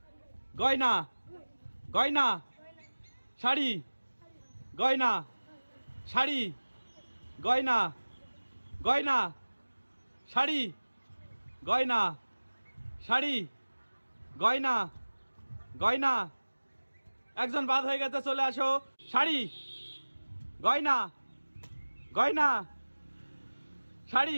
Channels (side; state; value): both; inverted; correlation -1.00